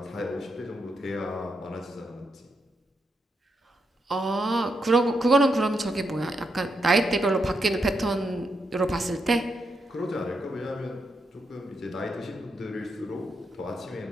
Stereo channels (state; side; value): normal; both; correlation 0.82